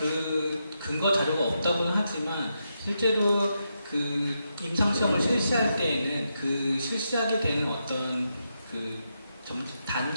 근거 자료가 없다고는 하지만 실제로 임상시험을 실시할 때에는 실시하게 되는 어떤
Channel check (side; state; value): both; inverted; correlation -0.84